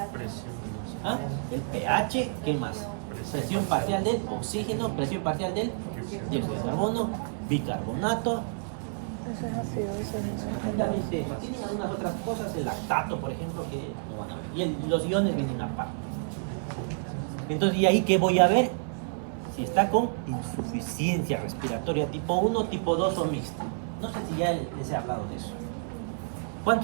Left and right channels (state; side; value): silent; left; digital silence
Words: ¿Ah? El pH, ¿qué más? Presión parcial del oxígeno, presión parcial del dióxido de carbono, bicarbonato. Exactamente eso. Tienen algunas otras cosas, el lactato, por ejemplo, que no van a ver. Y los iones vienen aparte. Entonces, ¿y ahí qué voy a ver? Si está con insuficiencia respiratoria tipo 1, tipo 2 o mixta. No sé si ya les he hablado de eso.